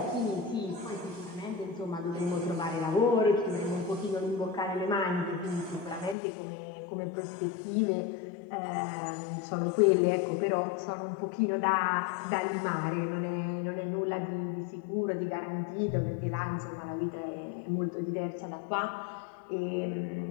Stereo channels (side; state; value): right; drops out; at 6.2 s